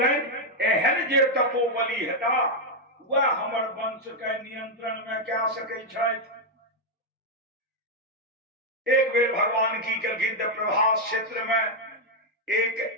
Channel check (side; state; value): both; normal; correlation 0.00